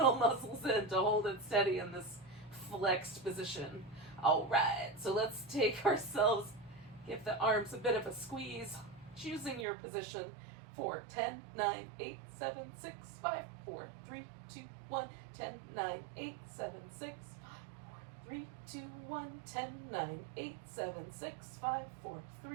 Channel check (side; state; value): left; drops out; at 9.7 s